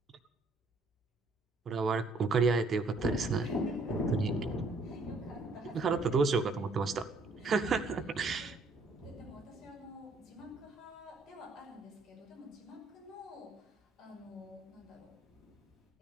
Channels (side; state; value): left; quieter; 3.2 dB